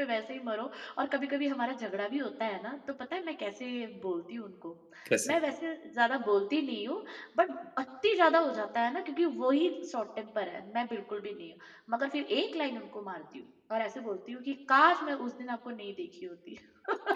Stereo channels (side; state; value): both; identical; correlation 1.00